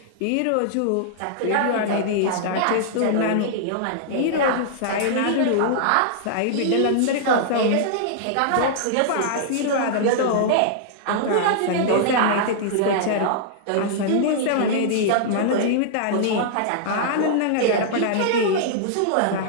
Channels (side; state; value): both; different; correlation -0.01